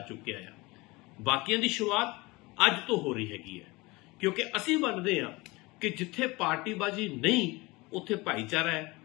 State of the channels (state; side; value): quieter; right; 23.3 dB